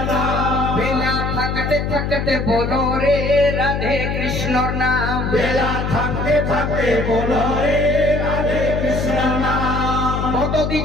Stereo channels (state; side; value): noise; left; hum, 2 dB below the sound